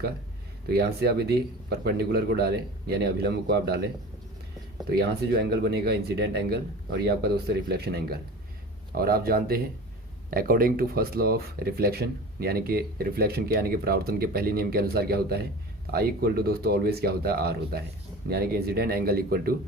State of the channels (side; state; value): both; normal; correlation 0.36